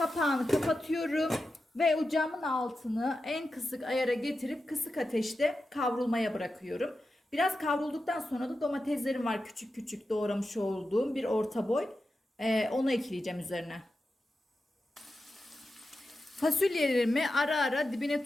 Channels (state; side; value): normal; both; correlation 0.91